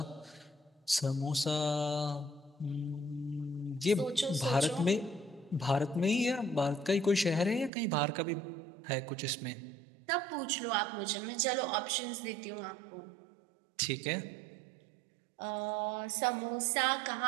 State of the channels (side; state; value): left; drops out; at 7.7 s